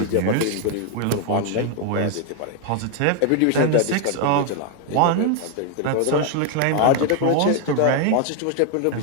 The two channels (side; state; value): both; different; correlation 0.01